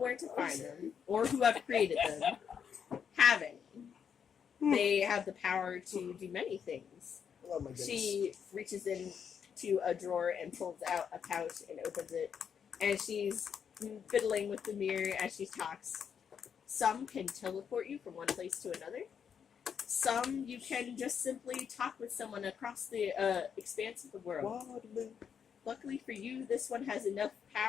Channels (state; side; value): quieter; right; 7.4 dB